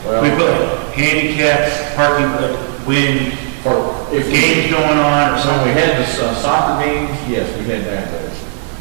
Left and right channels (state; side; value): silent; left; 61 dB below the other